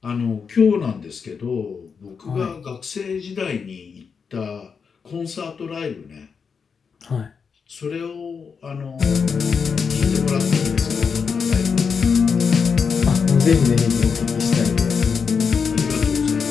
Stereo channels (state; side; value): quieter; right; 5.9 dB